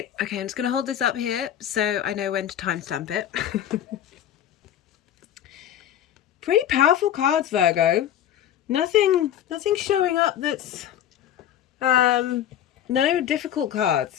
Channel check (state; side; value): quieter; right; 10.8 dB